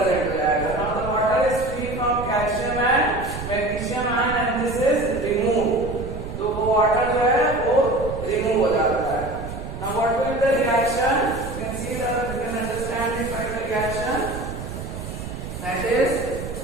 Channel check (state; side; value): noise; right; rumble, 9 dB below the sound